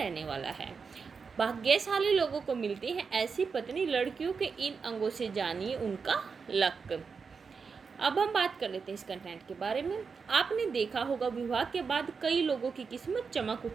वाला है। भाग्यशाली लोगों को मिलती है ऐसी पत्नी, लड़कियों के इन अंगों से जानिए उनका लक। अब हम बात कर लेते हैं इस कंटेंट के बारे में। आपने देखा होगा विवाह के बाद कई लोगों की किस्मत चमक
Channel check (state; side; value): quieter; left; 5.4 dB